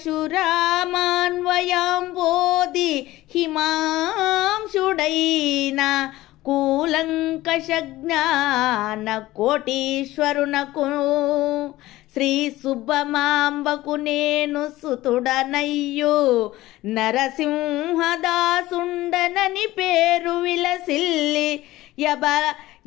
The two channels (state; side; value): quieter; right; 17.0 dB